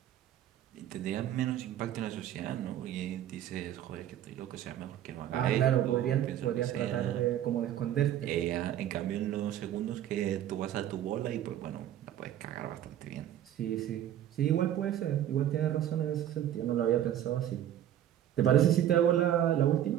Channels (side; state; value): left; quieter; 11.4 dB